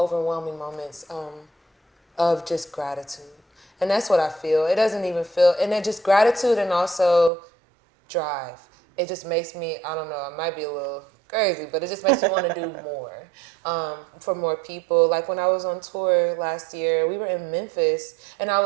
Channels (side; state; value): left; drops out; at 7.3 s